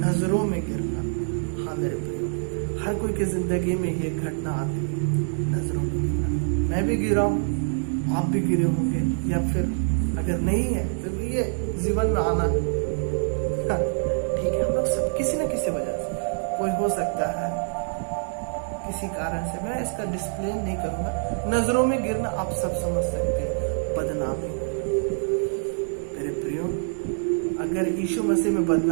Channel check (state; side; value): silent; left; digital silence